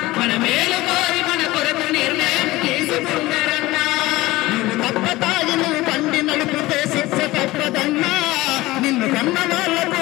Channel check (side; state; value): right; quieter; 18.8 dB